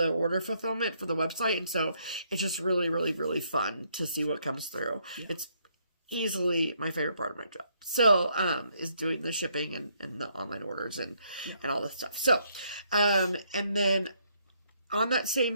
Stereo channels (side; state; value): both; inverted; correlation -0.71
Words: order fulfillment for the website, and so it's just really, really, really fun to see what comes through. Yeah. It's easily my favorite part of my job. So, is doing the shipping and the online orders and all this stuff. So, and then on that